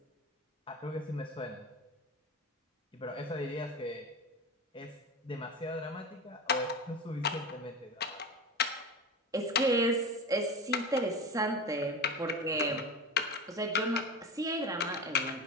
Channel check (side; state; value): both; normal; correlation 0.27